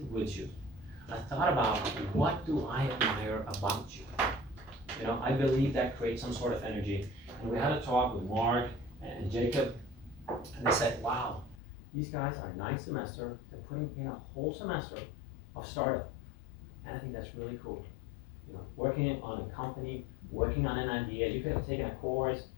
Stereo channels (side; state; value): right; drops out; at 11.6 s